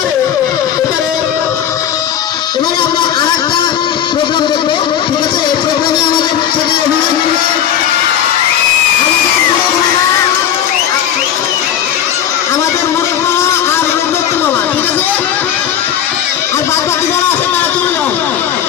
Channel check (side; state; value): right; quieter; 9.8 dB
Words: এবারে এবারে আমরা আর একটা প্রোগ্রাম দেখবো, ঠিক আছে? এই প্রোগ্রামে আমাদের সেটি অভিনয় করবে আমাদের মুরুখ মামা আর রূপদত্ত মামা, ঠিক আছে? আর বাদ বাকি যারা আছে তারা চলে যাও।